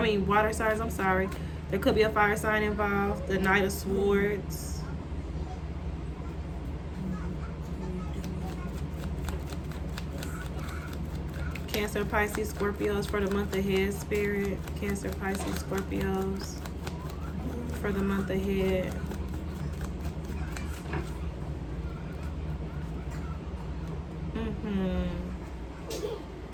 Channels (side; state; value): both; identical; correlation 1.00